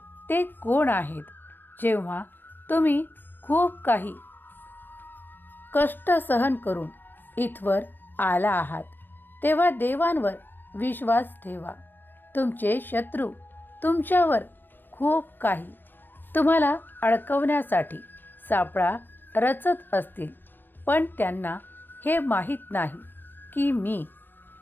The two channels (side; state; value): right; late; 0.094 ms